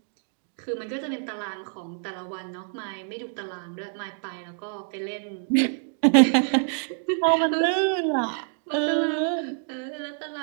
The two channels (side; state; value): left; silent; 60 dB below the other